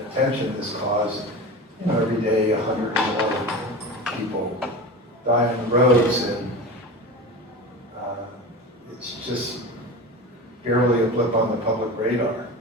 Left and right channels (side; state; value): both; normal; correlation 0.29